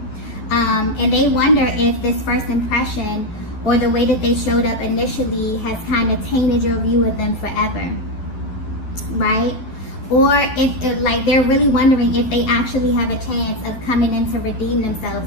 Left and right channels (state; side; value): late; right; 12 ms